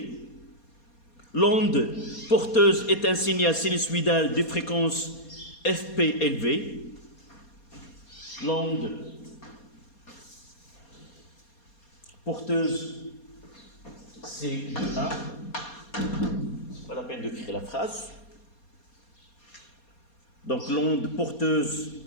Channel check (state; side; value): late; right; 4.2 ms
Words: L'onde porteuse est un signal sinusoïdal de fréquence FP élevée. L'onde porteuse, c'est 1. C'est pas la peine d'écrire la phrase. Donc l'onde porteuse